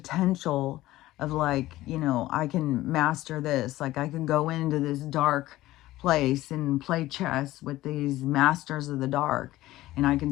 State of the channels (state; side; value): quieter; right; 16.4 dB